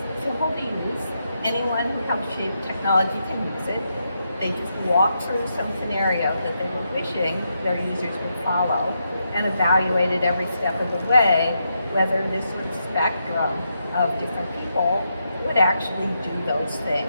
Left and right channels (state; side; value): inverted; both; correlation -0.82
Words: simple to use. Anyone who helps shape technology can use it. They just walk through some scenario that they were wishing their users would follow and evaluate it every step of the way whether this sort of spectrum of different people would actually do those things.